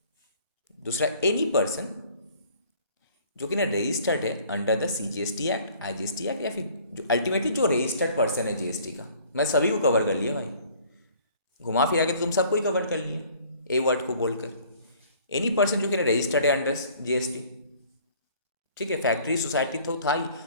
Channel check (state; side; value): inverted; both; correlation -0.54